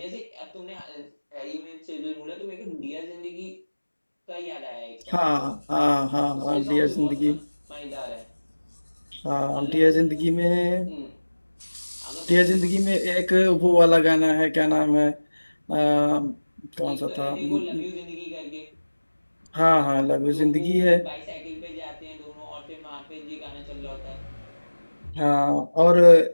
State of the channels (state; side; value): inverted; both; correlation -1.00